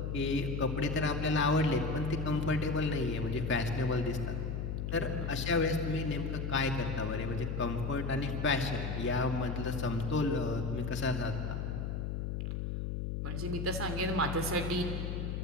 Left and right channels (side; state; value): left; noise; hum, 2 dB below the sound